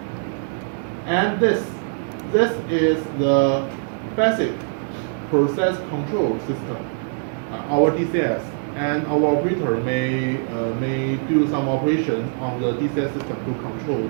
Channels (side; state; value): left; silent; digital silence